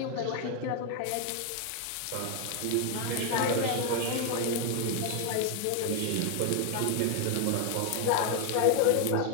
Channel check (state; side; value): different; both; correlation 0.01